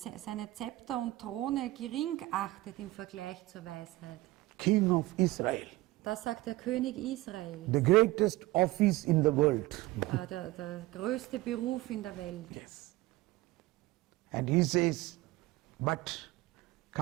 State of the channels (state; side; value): quieter; left; 18.5 dB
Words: Zepter und Throne gering achtet im Vergleich zur Weisheit. King of Israel, Das sagt der König Israel, the greatest office in the world. der größte Beruf in der Welt. Yes. And he says, but